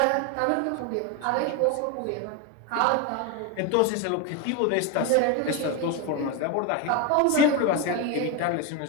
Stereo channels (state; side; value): different; both; correlation 0.02